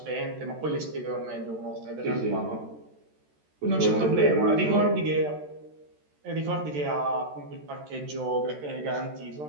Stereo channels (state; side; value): late; left; 13 ms